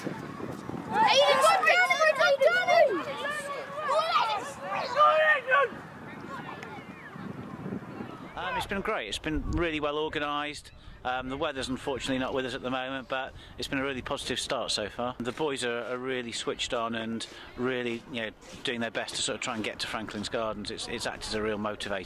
It's been great. It's been really well organised. The weather's unfortunately not with us at the moment, but it's been a really positive start so far. The boys are really switched on and really, doing their best to sort of try and get to Franklin's Gardens. It's acted as a real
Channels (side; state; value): both; identical; correlation 1.00